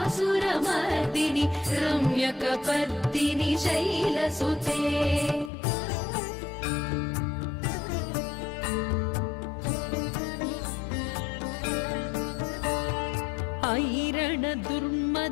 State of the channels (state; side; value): drops out; right; at 5.5 s